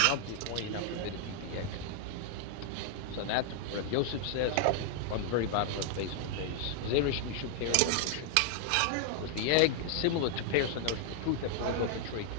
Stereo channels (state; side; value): different; both; correlation 0.00